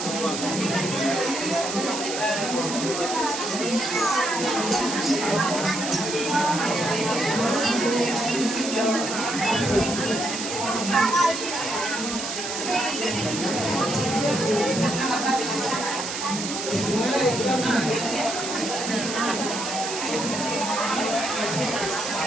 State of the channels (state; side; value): noise; right; hiss, 5 dB below the sound